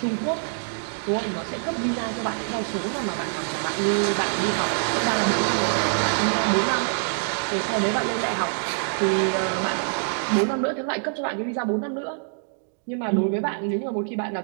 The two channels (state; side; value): silent; left; digital silence